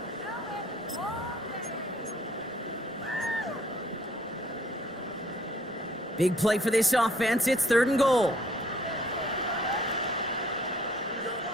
Big play for this offense. It's 3rd and goal.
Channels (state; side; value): normal; both; correlation 0.61